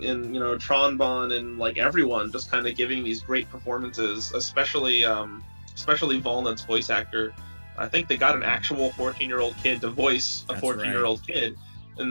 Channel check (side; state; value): both; inverted; correlation -1.00